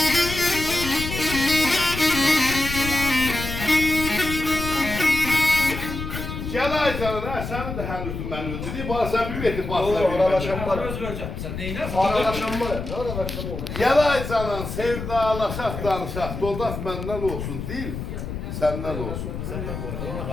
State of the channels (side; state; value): left; noise; rumble, 6 dB below the sound